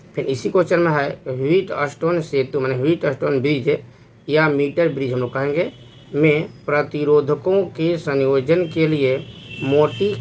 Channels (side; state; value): both; identical; correlation 1.00